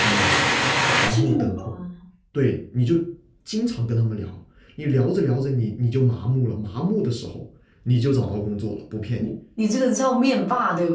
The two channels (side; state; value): both; identical; correlation 1.00